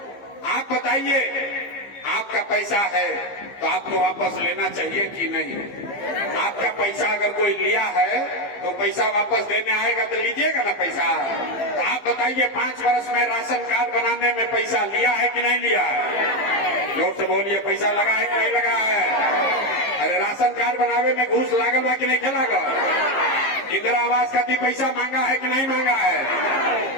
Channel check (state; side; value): late; right; 15 ms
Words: आप बताइए, आपका पैसा है तो आपको वापस लेना चाहिए कि नहीं? आपका पैसा अगर कोई लिया है तो पैसा वापस देने आएगा तो लीजिएगा ना पैसा। तो आप बताइए, 5 वर्ष में राशन कार्ड बनाने में पैसा लिया है कि नहीं लिया है? जोर से बोलिए, पैसा लगा है कि नहीं लगा है? अरे राशन कार्ड बनावे में घूस लागल बा कि नहीं खेला? इंदिरा आवास खातिर पैसा मांगा है कि नहीं मांगा